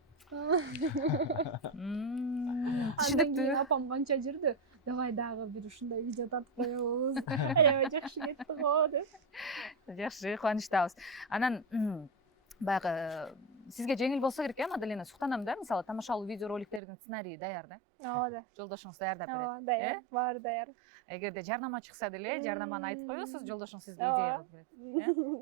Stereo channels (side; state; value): left; drops out; at 16.8 s